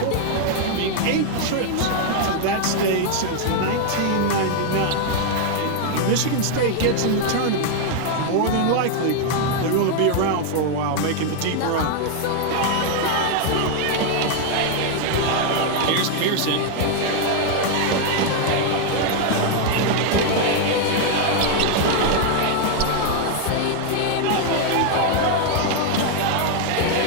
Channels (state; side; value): different; both; correlation 0.00